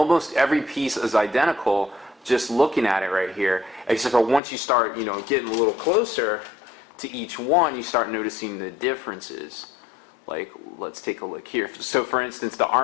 every piece is identical. Just looking at it right here, except for once you start getting a little closer to each one, you start noticing the differences. Like, let's take a look here. So for instance, the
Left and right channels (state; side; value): drops out; right; at 4.4 s